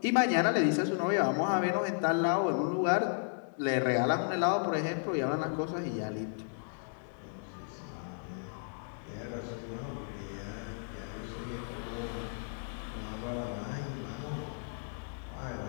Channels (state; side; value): silent; right; 55 dB below the other